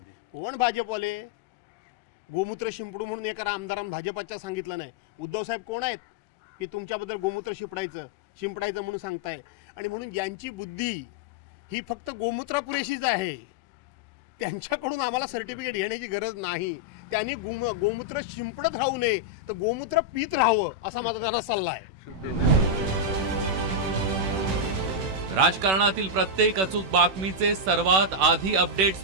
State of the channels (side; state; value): left; late; 16 ms